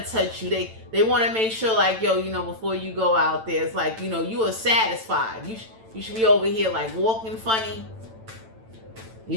touch you. They want to make sure like, yo, you know, before you go out there, it's like, you know, you are satisfied. You should be over here like walking funny.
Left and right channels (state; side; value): late; left; 9.0 ms